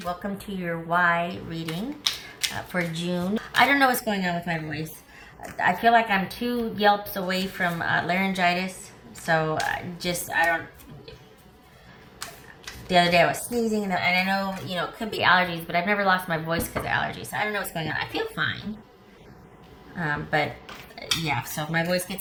Welcome to your Y reading for June. I don't know what's going on with my voice. I feel like I'm 2 yelps away from laryngitis, so I don't. The other day I was sneezing, and I know, it could be allergies, but I've never lost my voice because of allergies. So I don't know what's going on. I feel fine. But yeah, so if my voice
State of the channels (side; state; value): both; identical; correlation 1.00